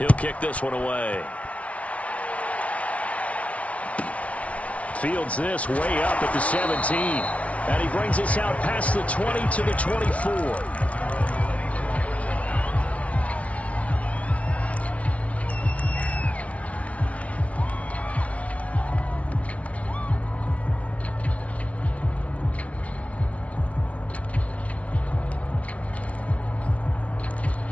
kick this one away. Fields this way up at the 17. And he brings us out past the 20 to the 24.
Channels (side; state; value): right; late; 0.065 ms